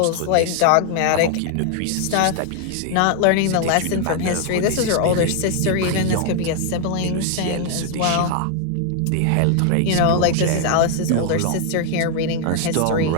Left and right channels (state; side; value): different; both; correlation 0.00